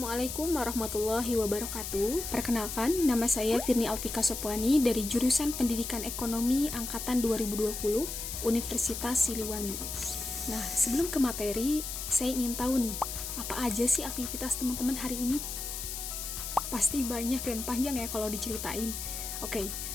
warahmatullahi wabarakatuh. Perkenalkan, nama saya Firni Alfika Sopwani dari jurusan Pendidikan Ekonomi Angkatan 2020 Universitas Siliwangi. Nah, sebelum ke materi, saya ingin tahu nih, apa aja sih aktivitas teman-teman hari ini? Pasti banyak dan panjang ya kalau diceritain. Oke,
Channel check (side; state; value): left; noise; hiss, 6 dB below the sound